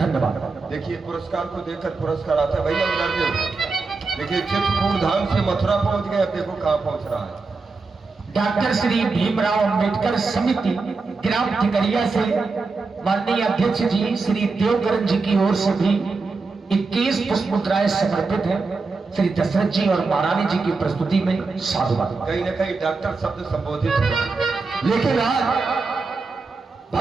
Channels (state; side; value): quieter; left; 4.1 dB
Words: देखिए पुरस्कार को देखकर पुरस्कार आता है भैया उधर। देखिए चित्रकूट धाम से मथुरा पहुंच गए, अब देखो कहां पहुंच रहा है। डॉक्टर श्री भीमराव अंबेडकर समिति ग्राम ठिकरिया से माननीय अध्यक्ष जी श्री देवकरण जी की ओर से भी 21 पुष्पमुद्राएं समर्पित है। श्री दशरथ जी और महारानी जी की प्रस्तुति में साधुवाद। कहीं न कहीं डॉक्टर शब्द संबोधित हुआ, लेकिन आज